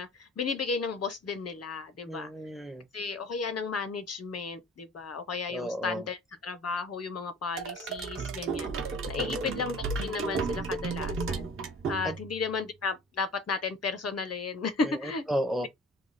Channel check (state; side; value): normal; both; correlation 0.45